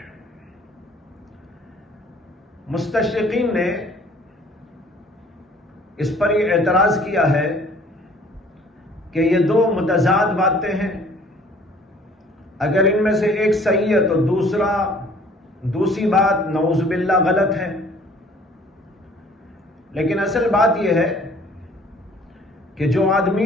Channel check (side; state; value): both; normal; correlation 0.55